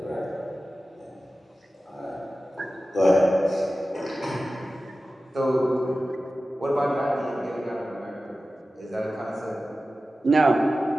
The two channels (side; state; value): both; normal; correlation 0.95